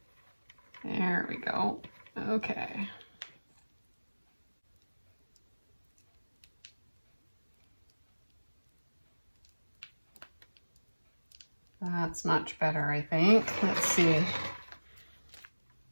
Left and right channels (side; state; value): both; inverted; correlation -1.00